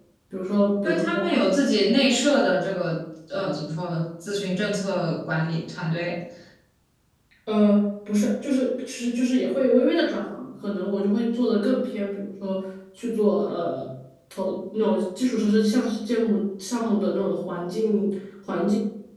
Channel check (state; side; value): identical; both; correlation 1.00